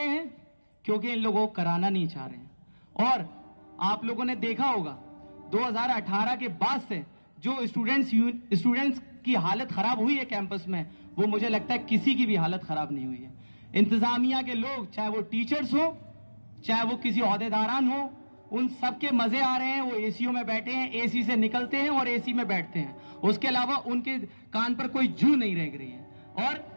हैं? क्योंकि इन लोगों को कराना नहीं चाह रहे हैं। और आप लोगों ने देखा होगा 2018 के बाद से जो स्टूडेंट्स की हालत खराब हुई है कैंपस में, वो मुझे लगता है किसी की भी हालत खराब नहीं हुई है। इंतजामिया के लोग, चाहे वो टीचर्स हो, चाहे वो किसी ओहदेदारान हो, उन सबके मजे आ रहे हैं। वो एसीओ में बैठे हैं, एसी से निकलते हैं और एसी में बैठते हैं। उसके अलावा उनके कान पर कोई जू नहीं रह रही है। और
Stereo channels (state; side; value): inverted; both; correlation -1.00